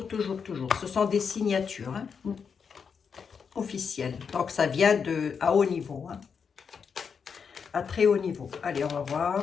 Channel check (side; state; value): right; quieter; 6.3 dB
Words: Ce sont des signatures hein, officielles. Donc, ça vient à haut niveau. Hein, à très haut niveau. Allez, on va